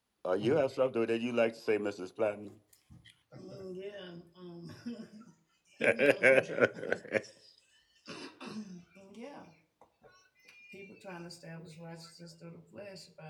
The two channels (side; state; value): both; identical; correlation 1.00